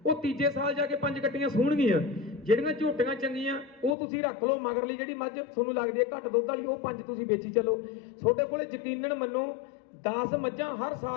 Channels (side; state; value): right; drops out; at 4.0 s